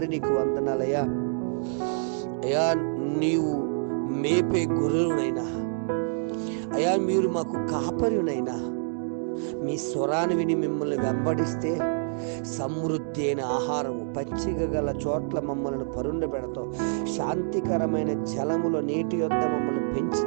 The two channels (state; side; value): silent; left; digital silence